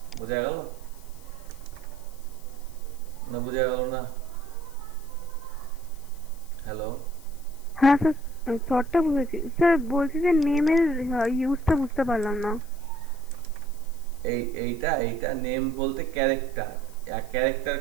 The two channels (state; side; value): noise; left; hiss, 23 dB below the sound